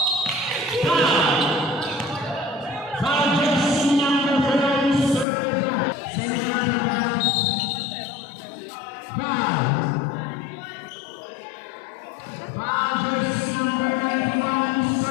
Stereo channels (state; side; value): drops out; right; at 5.2 s